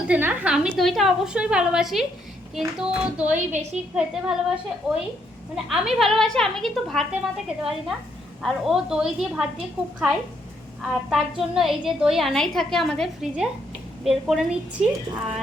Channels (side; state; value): both; normal; correlation 0.73